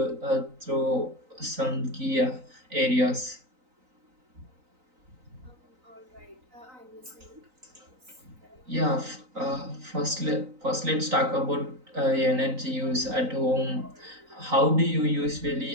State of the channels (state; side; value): late; left; 3.9 ms